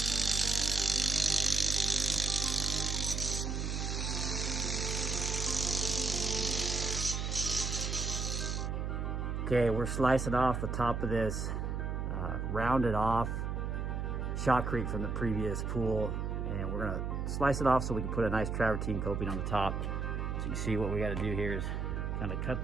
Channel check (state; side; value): noise; right; hum, 1 dB below the sound